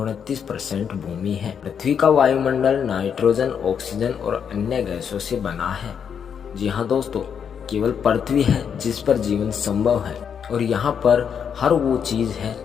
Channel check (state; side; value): quieter; right; 7.5 dB